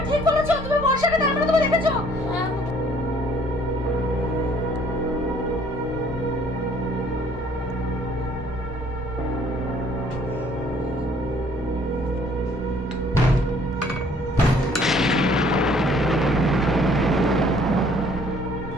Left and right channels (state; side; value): normal; both; correlation 0.59